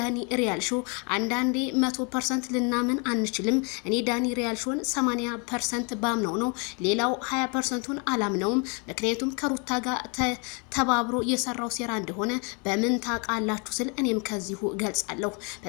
ሪያል ሾው አንዳንዴ 100% ልናምን አንችልም። እኔ ዳኒ ሪያል ሾውን 80% ባምነው ነው፣ ሌላው 20%ን አላምነውም። ምክንያቱም ከሩታ ጋር ተባብሮ የሰራው ሴራ እንደሆነ በምን ታውቃላችሁ ስል እኔም ከዚሁ ገልጻለሁ።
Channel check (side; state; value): right; quieter; 34.2 dB